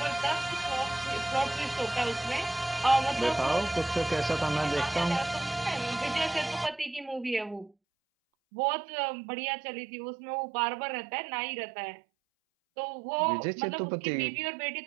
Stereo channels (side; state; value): left; drops out; at 7.7 s